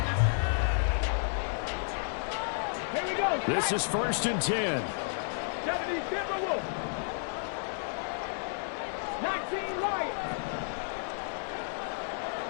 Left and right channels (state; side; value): silent; right; 57 dB below the other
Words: Here we go. This is 1st and 10. 70 Timberwolves. 19 Lions.